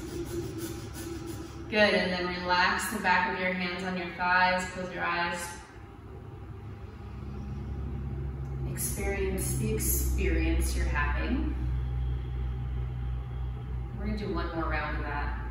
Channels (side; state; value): both; identical; correlation 1.00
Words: Good, and then relax the back of your hands on your thighs, close your eyes. Experience the experience you're having. We're gonna do one more round of that.